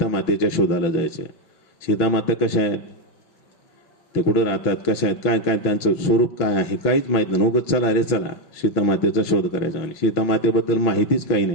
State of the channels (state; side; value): late; right; 6.0 ms